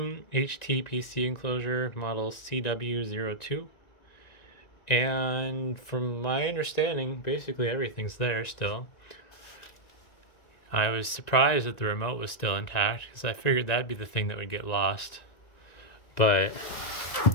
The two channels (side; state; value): right; late; 1.9 ms